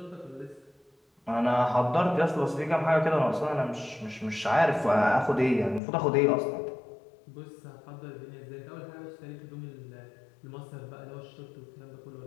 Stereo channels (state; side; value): drops out; right; at 5.8 s